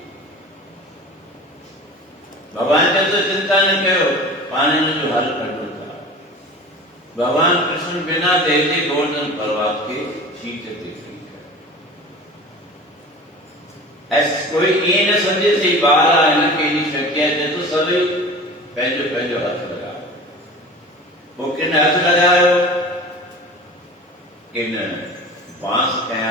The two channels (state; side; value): normal; both; correlation 0.37